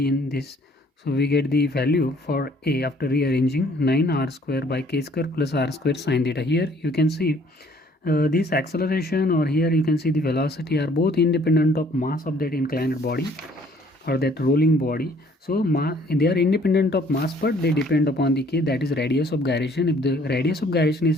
in this, so we get the value for a after rearranging 9r square by k square plus r square sine theta. Here you can see this acceleration, or here you can see the velocity, are both independent of mass of that inclined body or that rolling body. So they are independent of mass, but they depend upon the k, that is radius of gyration. If the radius of gyration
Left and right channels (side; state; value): both; normal; correlation 0.59